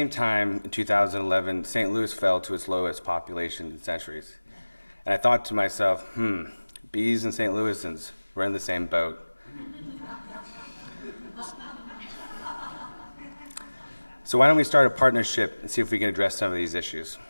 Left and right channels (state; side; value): inverted; both; correlation -1.00